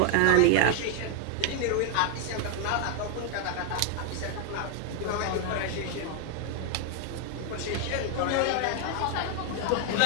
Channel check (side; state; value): both; different; correlation 0.00